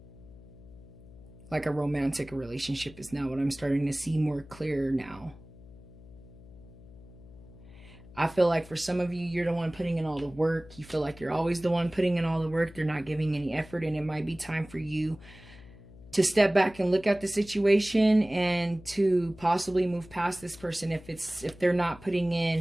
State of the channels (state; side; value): noise; left; hum, 20 dB below the sound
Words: Like a romantic relationship is now what I'm starting to see more clear now. I feel like for some of you, you're the one putting in all the work. You feel like you're always the one putting in all the work. They're not giving any effort, and it might be time for you to step back and look at the situation and to possibly move past this person if they're not putting